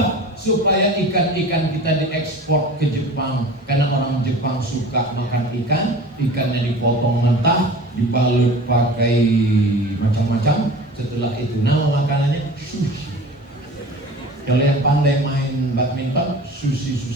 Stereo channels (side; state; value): both; normal; correlation 0.39